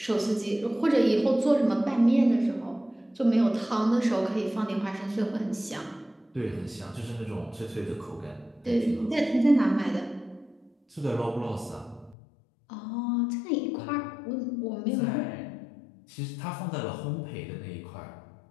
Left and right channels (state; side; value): drops out; right; at 12.2 s